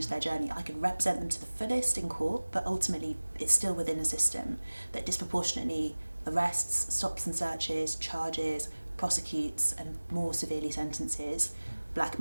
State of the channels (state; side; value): inverted; both; correlation -1.00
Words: their journey. I could represent them to the fullest in court, but ultimately it's still within a system that disproportionately arrests, stops and searches, charges, prosecutes and more severely sentences black